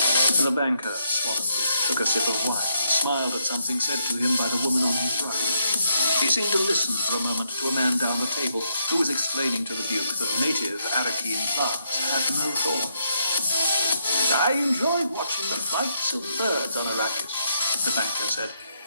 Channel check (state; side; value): inverted; both; correlation -0.76